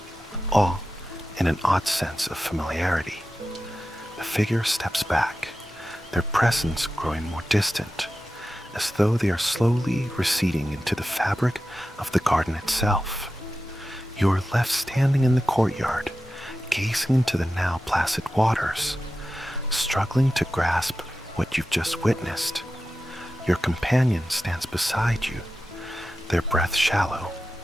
awe, and an odd sense of familiarity. The figure steps back, their presence growing more distant, as though they are slowly receding into the fabric of the garden itself. You are left standing in the courtyard, gazing into the now placid waters, struggling to grasp what you've just witnessed. Your companion stands beside you, their breath shallow,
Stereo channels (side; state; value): both; normal; correlation 0.93